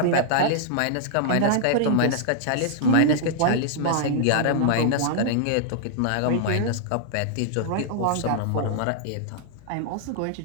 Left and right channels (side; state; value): both; different; correlation -0.01